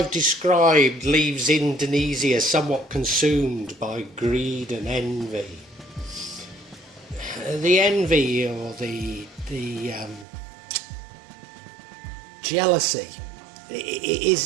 described leaves Indonesia somewhat consumed by greed and envy. The envy or the jealousy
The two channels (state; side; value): drops out; left; at 10.2 s